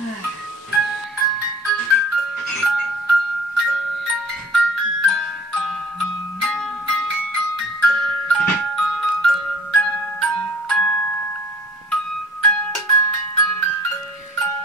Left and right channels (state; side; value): normal; both; correlation 0.48